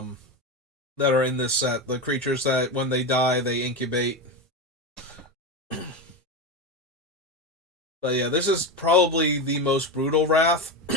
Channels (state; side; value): normal; both; correlation 0.17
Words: that are in this set. The creatures that, when they die, they incubate. But yeah, this is probably the most brutal Wrath,